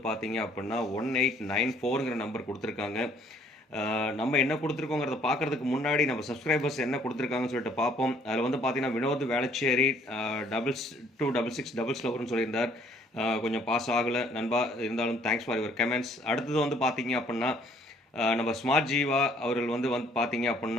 பார்த்தீங்க அப்படின்னா 1894ங்கிற நம்பர் கொடுத்துருக்காங்க. நம்ம என்ன கொடுத்துருக்கோங்கிறத பார்க்கறதுக்கு முன்னாடி நம்ம சப்ஸ்கிரைபர்ஸ் என்ன கொடுத்துருக்காங்கன்னு சொல்லிட்டு பார்ப்போம். அதில் வந்து பார்த்தீங்கன்னா வினோத் வேளச்சேரி 2266 சொல்லியிருந்தார். கொஞ்சம் பாஸ் ஆகலை நண்பா, இருந்தாலும் தேங்க்ஸ் ஃபார் யுவர் கமெண்ட்ஸ். அடுத்தது வந்து பார்த்தீங்க அப்படின்னா நம்ம ஸ்மார்ட் ஜீவா அவர்கள் வந்து பார்த்தீங்க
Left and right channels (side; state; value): both; normal; correlation 0.61